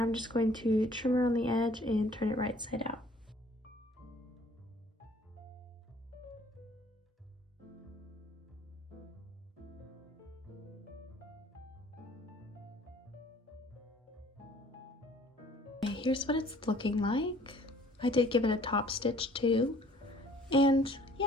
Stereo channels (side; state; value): both; normal; correlation 0.56